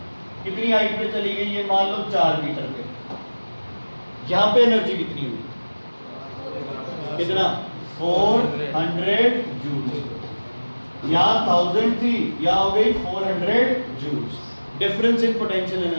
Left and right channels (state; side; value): inverted; both; correlation -1.00